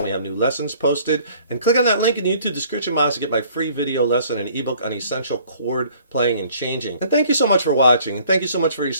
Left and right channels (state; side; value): inverted; both; correlation -0.57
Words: we have new lessons posted. And click on that link in the YouTube description box to get my free video lesson and ebook on essential chord playing and changing. And thank you so much for watching. And thank you so much for your